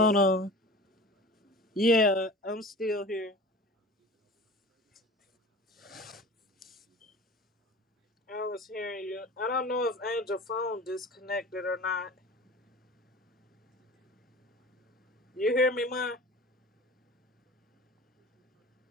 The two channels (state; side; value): normal; both; correlation 0.38